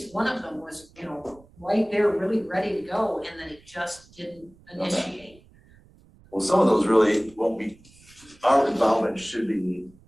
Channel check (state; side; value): noise; right; rumble, 27 dB below the sound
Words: one of them was, right there, really ready to go, and then it just didn't initiate. Well, some of those really won't be, our involvement should be